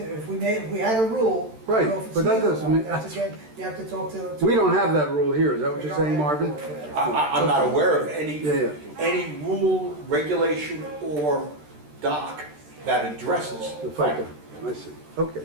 If we had a rule. I don't Right, know if it's but that legal or doesn't not. mean- That's again, you have to talk to. We don't have that rule here, is that what We you're don't saying, have a Marvin? rule for that. I'm not aware of Yeah. any rule, regulation, or doc that addresses The FICO, I see. Okay,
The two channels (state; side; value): late; left; 13 ms